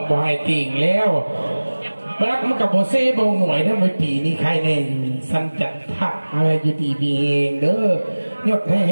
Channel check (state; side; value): inverted; both; correlation -1.00